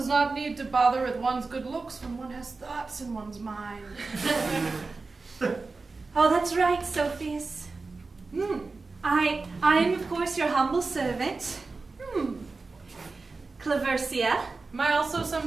need to bother with one's good looks when one has thoughts in one's mind. Oh, that's right, Sophius. I am, of course, your humble servant. Claversia. Am I also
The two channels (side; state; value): left; quieter; 3.9 dB